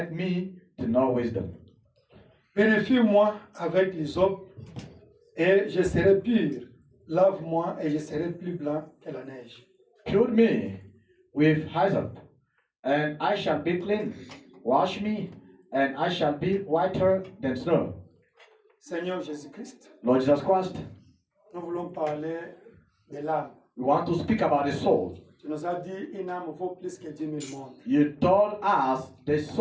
me to know wisdom. Purifie-moi avec l'hysope, et je serai pur. Lave-moi, et je serai plus blanc que la neige. Pure me with hyssop, and I shall be clean. Wash me, and I shall be whiter than snow. Seigneur Jésus-Christ, Lord Jesus Christ, nous voulons parler de l'âme. we want to speak about the soul. Tu nous as dit une âme vaut plus que 10 000 mondes. You told us the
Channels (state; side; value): identical; both; correlation 1.00